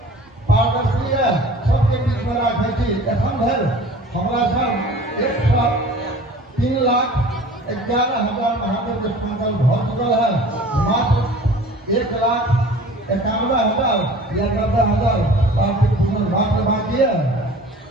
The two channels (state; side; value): normal; both; correlation 0.45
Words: पारदर्शी है, सबके बीच में राखै छी। एखन धरि हमरा सब 103,11,000 महादेव के संकल्प भऽ चुकल है, मात्र 1,91,000 या 90,000 पार्थिव पूजन मात्र बाकी है।